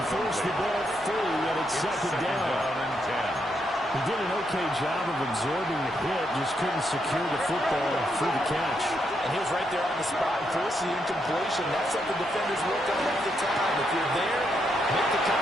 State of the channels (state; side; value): normal; both; correlation 0.79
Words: Force the ball free, and it's second down. He did an okay job of absorbing the hit, just couldn't secure the football through the catch. And he was right there on the spot and forced the incompletion. That's something defenders work on all the time. If you're there, make the